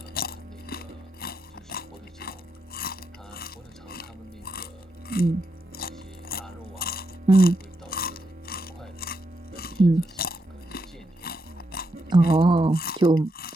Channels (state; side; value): normal; both; correlation 0.82